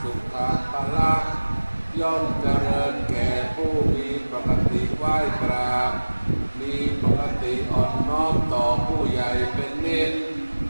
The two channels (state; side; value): inverted; both; correlation -1.00